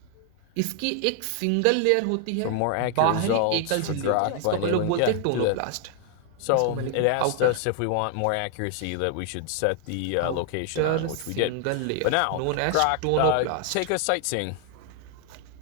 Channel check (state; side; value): different; both; correlation 0.00